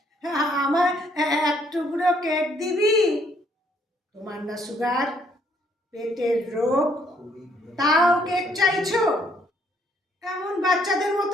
আমার এক টুকরো কেক দিবি? তোমার না সুগার, পেটের রোগ, তাও কেক চাইছো? এমন বাচ্চাদের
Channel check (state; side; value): normal; both; correlation 0.67